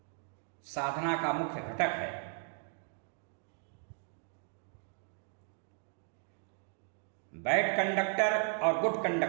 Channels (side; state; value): left; silent; 54 dB below the other